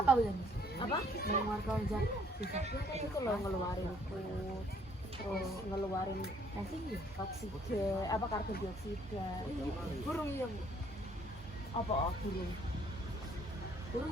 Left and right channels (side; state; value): both; normal; correlation 0.63